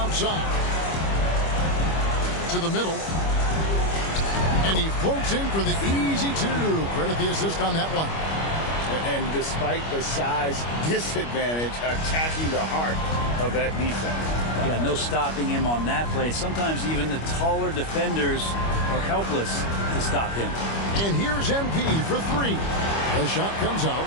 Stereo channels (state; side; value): late; right; 25 ms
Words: To the middle. And he floats in for the easy 2. Credit the assist on that one. And despite the size disadvantage, attacking the heart of that defense. Yeah, no stopping him on that play. Sometimes even the taller defenders are helpless to stop him. And here's MP for 3. The shot comes out.